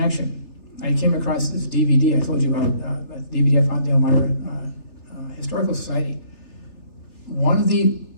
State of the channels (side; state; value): right; late; 3.4 ms